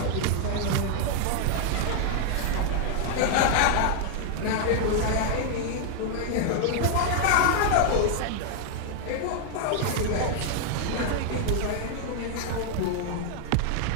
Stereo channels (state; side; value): different; both; correlation 0.00